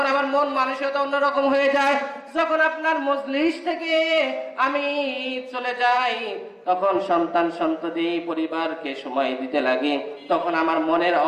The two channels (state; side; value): identical; both; correlation 1.00